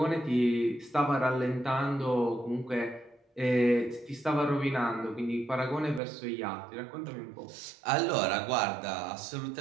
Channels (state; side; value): drops out; left; at 6.0 s